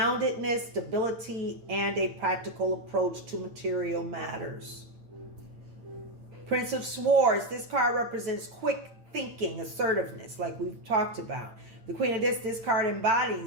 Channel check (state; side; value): late; left; 8.9 ms